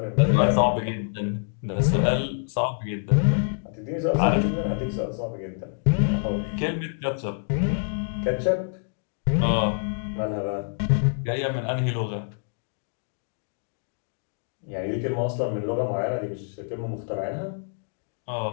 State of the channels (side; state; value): right; silent; digital silence